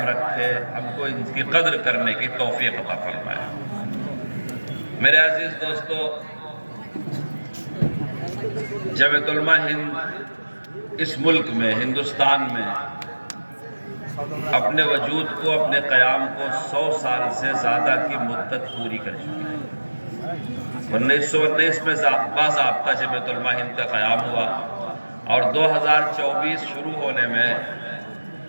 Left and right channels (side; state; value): both; inverted; correlation -1.00